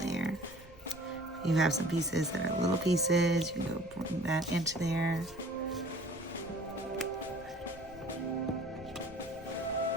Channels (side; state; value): right; noise; rumble, 22 dB below the sound